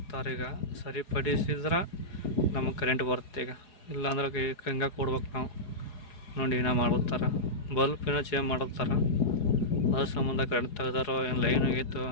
ಈಗ ಸರಿಪಡಿಸಿದ್ರೆ ನಮಗೆ ಕರೆಂಟ್ ಬರುತ್ತೆ. ಈಗ ಇಲ್ಲಾಂದ್ರೆ ಹಂಗೆ ಕೊಡ್ಬೇಕು ನಾವು. ನೋಡಿ ಏನೋ ಮಾಡ್ತಾರೆ, ಬಲ್ಪ್ ಏನೋ ಚೇಂಜ್ ಮಾಡತ್ತಾರ. ಅದ್ರ ಸಂಬಂಧ ಕರೆಂಟ್ ತೆಗ್ದಾರೋ ಏನು ಲೈನ್ ಆಗೈತೋ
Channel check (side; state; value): right; late; 4.8 ms